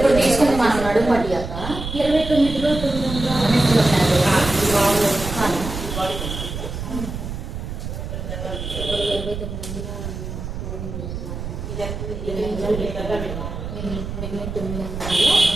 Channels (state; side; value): noise; right; rumble, 7 dB below the sound